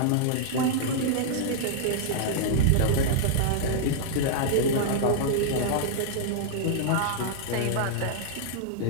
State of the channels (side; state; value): both; different; correlation -0.02